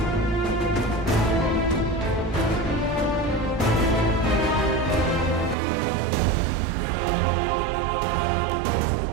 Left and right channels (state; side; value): drops out; left; at 5.6 s